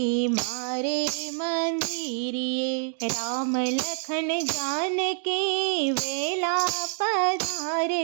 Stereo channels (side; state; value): left; silent; 56 dB below the other